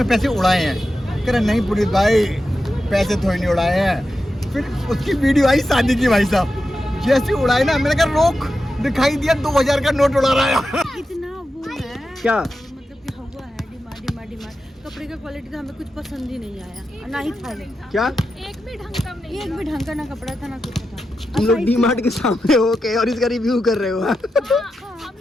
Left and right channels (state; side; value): normal; both; correlation 0.89